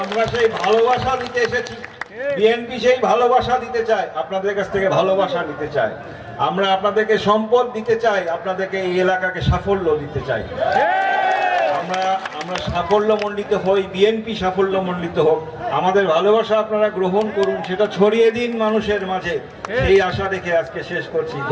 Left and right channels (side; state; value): both; identical; correlation 1.00